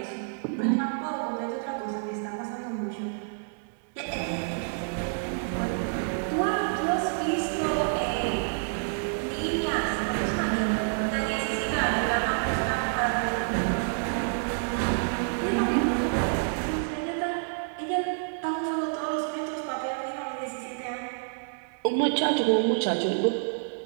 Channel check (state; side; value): silent; left; digital silence